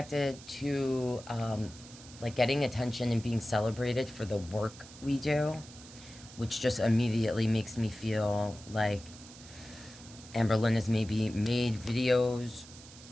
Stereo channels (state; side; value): noise; right; hiss, 18 dB below the sound